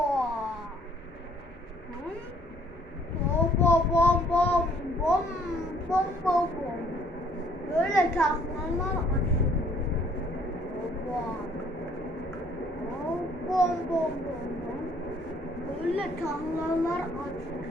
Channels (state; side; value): normal; both; correlation 0.61